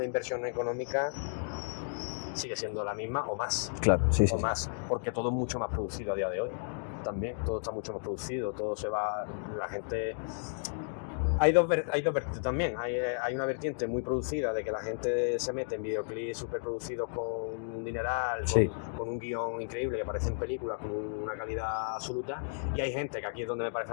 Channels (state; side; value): silent; right; digital silence